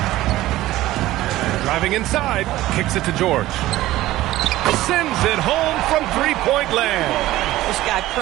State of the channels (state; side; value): quieter; left; 16.0 dB